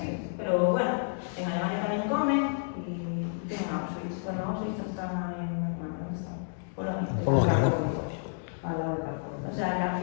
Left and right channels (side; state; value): right; silent; digital silence